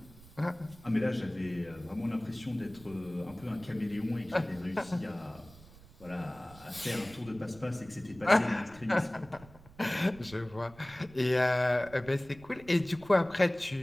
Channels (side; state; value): right; noise; rumble, 21 dB below the sound